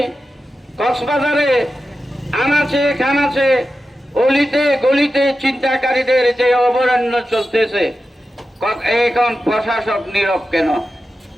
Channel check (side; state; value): both; normal; correlation 0.92